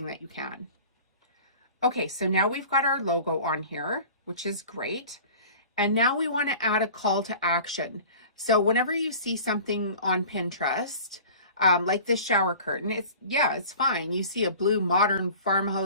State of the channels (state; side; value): inverted; both; correlation -0.42